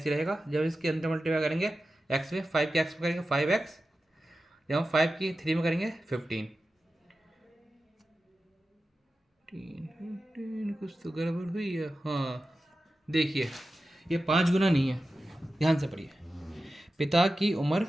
रहेगा, जब इसके अंदर मल्टीप्लाई करेंगे x में, 5 के x में करेंगे 5x, जब हम 5 की 3 में करेंगे 15। कुछ तो गड़बड़ हुई है। हाँ देखिए ये 5 गुना नहीं है, ध्यान से पढ़िए। पिता की उम्र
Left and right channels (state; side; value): normal; both; correlation 0.93